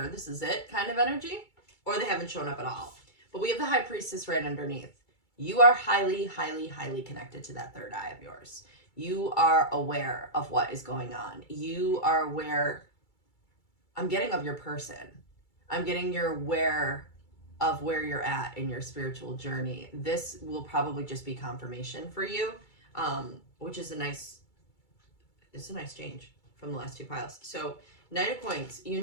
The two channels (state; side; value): late; right; 2.3 ms